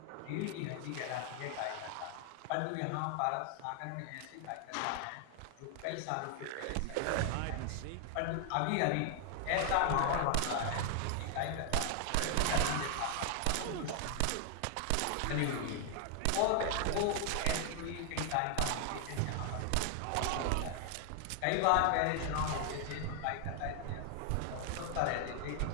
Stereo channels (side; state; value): both; different; correlation 0.00